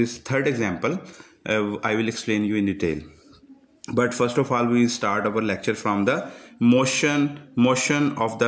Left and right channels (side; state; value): both; identical; correlation 1.00